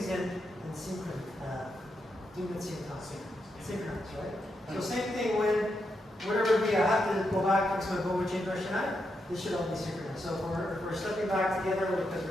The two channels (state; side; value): normal; both; correlation 0.83